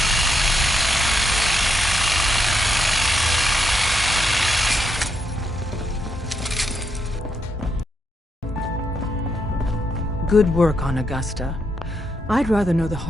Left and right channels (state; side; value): normal; both; correlation 0.80